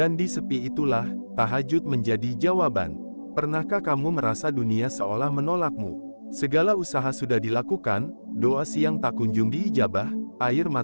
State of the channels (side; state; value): both; inverted; correlation -1.00